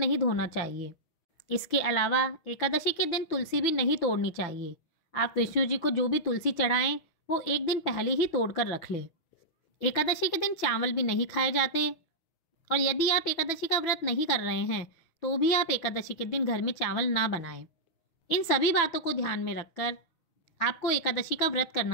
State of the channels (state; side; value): late; right; 6.0 ms